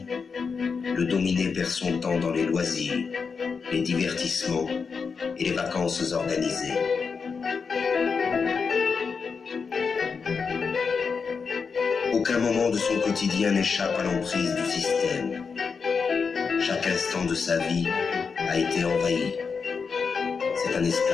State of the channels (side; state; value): right; quieter; 5.4 dB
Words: le dominé perd son temps dans les loisirs, les divertissements et les vacances organisées. Aucun moment de son quotidien n'échappe à l'emprise du système. Chaque instant de sa vie a été envahi. C'est un